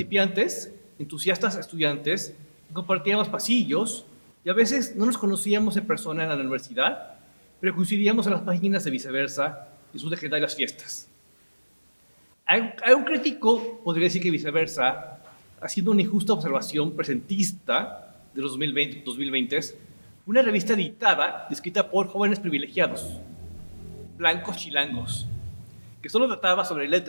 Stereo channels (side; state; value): both; inverted; correlation -1.00